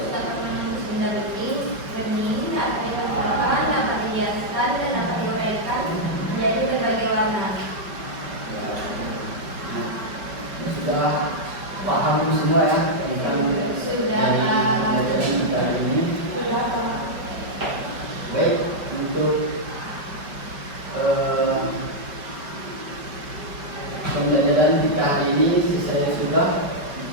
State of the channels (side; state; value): left; late; 5.3 ms